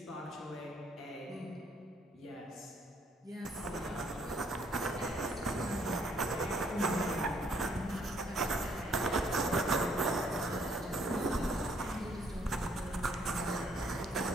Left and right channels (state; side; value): normal; both; correlation 0.67